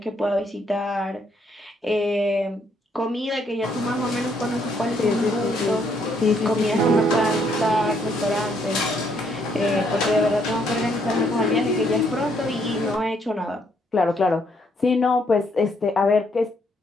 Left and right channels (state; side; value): normal; both; correlation 0.71